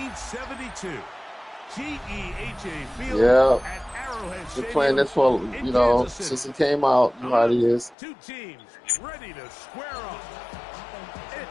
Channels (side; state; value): right; drops out; at 8.0 s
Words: GEHA Field Yeah, at Arrowhead been playing Stadium this for in Kansas City. since it came out. You know how it is. Two teams ready to square off.